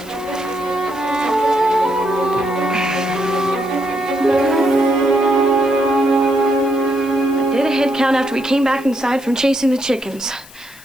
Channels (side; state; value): left; noise; hiss, 21 dB below the sound